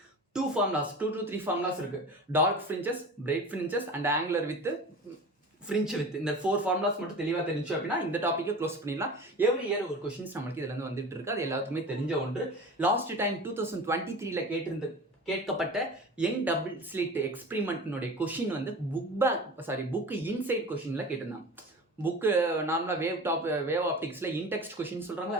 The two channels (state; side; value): normal; both; correlation 0.35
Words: 2 to 3 ஃபார்முலாஸ் இருக்கு. Dark fringes, bright fringes and angular with fringe with. இந்த 4 ஃபார்முலாஸ் மட்டும் தெளிவாக தெரிஞ்சு அப்படின்னா இந்த டாப்பிக்கை க்ளோஸ் பண்ணிடலாம். எவ்ரி இயர் ஒரு கொஸ்டின்ஸ் நம்மளுக்கு இதுல இருந்து வந்துட்டு இருக்கு. அது எல்லாத்துக்குமே தெரிஞ்ச ஒன்று. லாஸ்ட் டைம் 2023ல கேட்கப்பட்ட யங் டபுள் ஸ்லிட் எக்ஸ்பெரிமெண்ட்னுடைய கொஷின் வந்து புக் இன்சைட் கொஷின்ல கேட்டிருந்தாங்க. புக்கு நார்மலாக வேவ் ஆப்டிக்ஸில் இன்டெக்ஸ்ட் கொஷின்